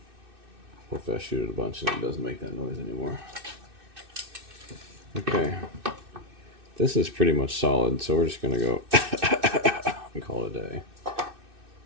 Hopefully I shoot it a bunch and it doesn't make that noise anymore. Okay. This is pretty much solid, so we're just gonna go and call it a day.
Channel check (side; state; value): left; late; 2.6 ms